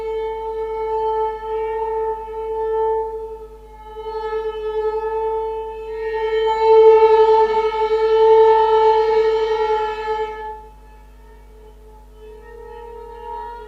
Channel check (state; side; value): identical; both; correlation 1.00